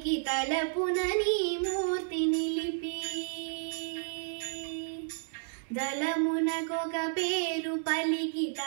తలపున నీ మూర్తి నిలిపి దళమునకొక పేరు పలికి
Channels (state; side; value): silent; left; digital silence